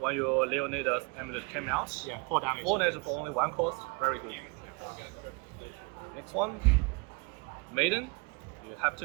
your Leonidas amulet came out. Yeah, 4 damage. 4 damage for only 1 cost, very good. Next one, Maiden, you have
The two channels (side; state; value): left; quieter; 28.7 dB